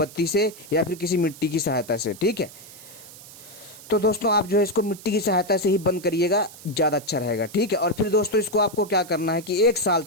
से या फिर किसी मिट्टी की सहायता से। ठीक है, तो दोस्तों आप जो है इसको मिट्टी की सहायता से ही बंद करिएगा, ज़्यादा अच्छा रहेगा। ठीक है, और फिर दोस्तों इसको आपको क्या करना है कि 1 साल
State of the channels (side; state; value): right; noise; hiss, 18 dB below the sound